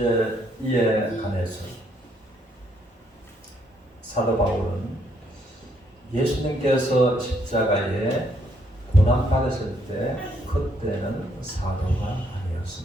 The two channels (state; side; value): normal; both; correlation 0.71